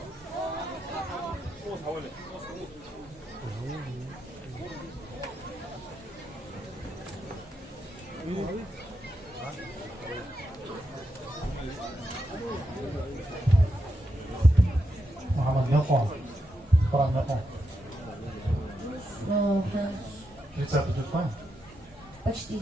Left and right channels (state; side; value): normal; both; correlation 0.84